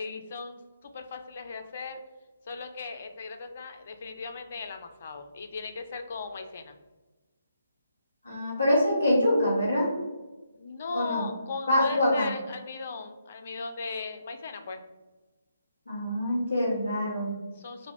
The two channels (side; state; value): both; inverted; correlation -0.78